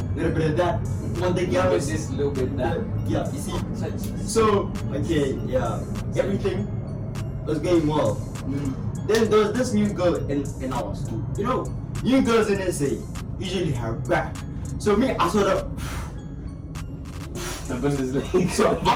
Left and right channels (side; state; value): both; identical; correlation 1.00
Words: little bit of that. One day, girl was this little bit that. yeah, you see. So, okay, yeah, everything was going well. Then there was this new girl in our school. New girls in SA usually have back. So me, I sort of. The Bundesliga. So